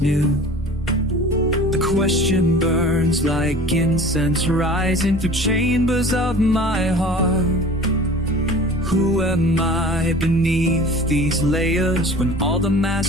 knew. The question burns like incense rising through chambers of my heart. Who am I beneath these layers when all the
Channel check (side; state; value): both; normal; correlation 0.42